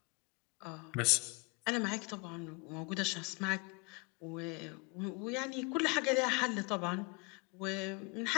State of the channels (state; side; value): quieter; right; 30.4 dB